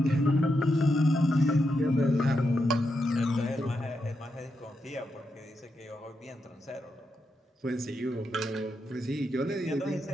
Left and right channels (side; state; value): both; normal; correlation 0.84